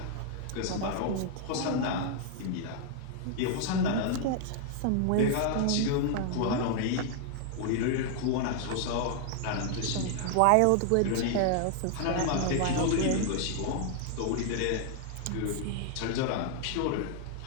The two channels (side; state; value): both; different; correlation 0.00